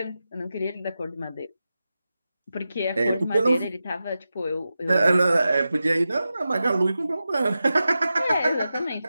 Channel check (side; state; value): both; inverted; correlation -0.92